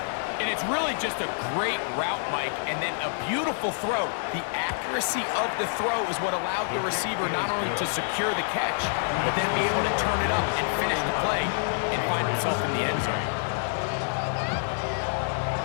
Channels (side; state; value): right; silent; digital silence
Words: And it's really just a great route, Mike, and then a beautiful throw. The accuracy of the throw is what allowed the receiver not only to secure the catch, but then be able to turn it up and finish the play and find himself in the end zone.